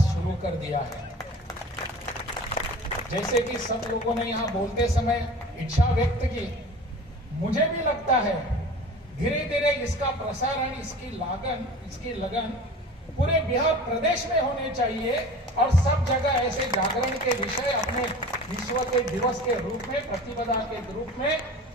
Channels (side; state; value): both; normal; correlation 0.39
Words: शुरू कर दिया है। जैसे कि सब लोगों ने यहां बोलते समय इच्छा व्यक्त की, मुझे भी लगता है धीरे धीरे इसका प्रसारण, इसकी लगन पूरे बिहार प्रदेश में होने चाहिए, और सब जगह ऐसे जागरण के विषय अपने विश्व के दिवस के रूप में, प्रतिपदा के रूप में